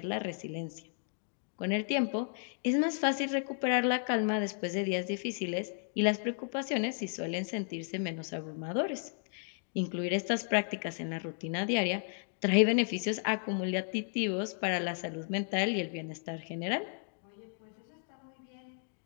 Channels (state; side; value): silent; right; 55 dB below the other